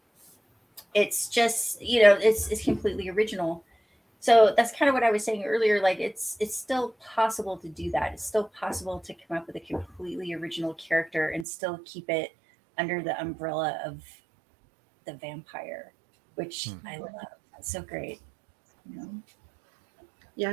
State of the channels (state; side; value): drops out; left; at 11.5 s